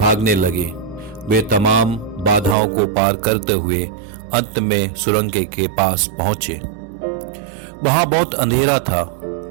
लगे। वे तमाम बाधाओं को पार करते हुए अंत में सुरंग के पास पहुंचे। वहां बहुत अंधेरा था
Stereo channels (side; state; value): left; drops out; at 2.6 s